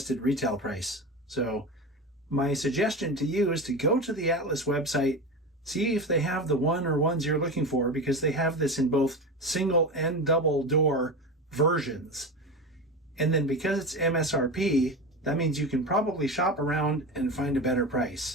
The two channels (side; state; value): both; normal; correlation 0.24